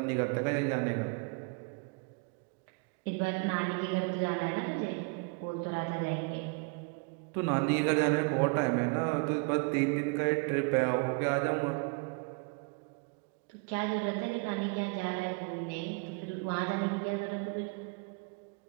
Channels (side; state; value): left; quieter; 33.7 dB